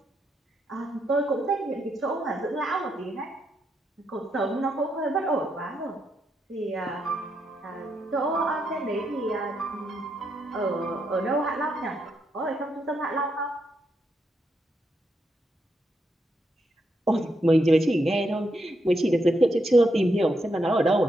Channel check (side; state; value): both; normal; correlation 0.80